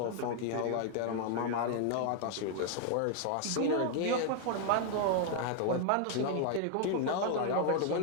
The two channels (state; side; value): different; both; correlation 0.00